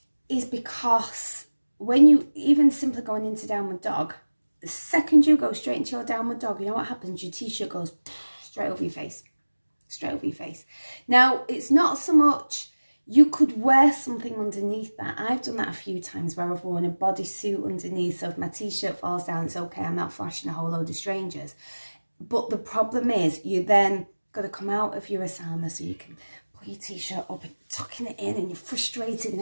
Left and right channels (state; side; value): inverted; both; correlation -1.00